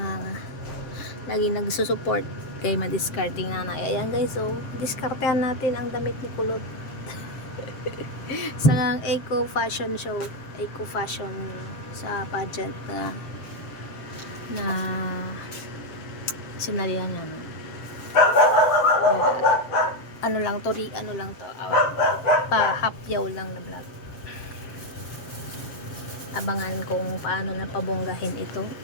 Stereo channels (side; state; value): right; late; 7.6 ms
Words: lagi nagsusupport kay Madiscarding Nanay. Ayan guys, so diskartehan natin ang damit ni Kulot sa eco fashion show, eco fashion sa pageant na sinalihan niya, no? Ano lang to, pa-hapyaw lang na vlog. Abangan kung paano na pabonggahin itong